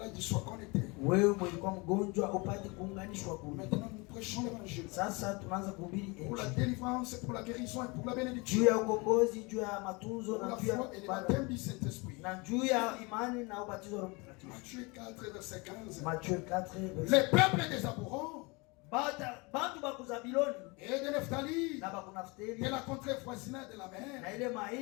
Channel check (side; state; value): right; quieter; 27.3 dB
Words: sois connecté. Wewe mlikuwa mgonjwa upate kuunganishwa kule. Maintenant, nous prêchons l'évangile. Sasa tunaanza kuhubiri injili. Pour la délivrance, pour la guérison et pour la bénédiction. Juu ya ukombozi, juu ya matunzo na juu ya baptême du Saint-Esprit. Na juu ya imani na ubatizo wa Roho Mtakatifu. Matthieu 4 verset 15. Matthieu 4 verset. Les peuples des Aborons. Bantu baku Zabiloni et de Nephtali, na baku Naftali, de la contrée voisinage de la mer, na ile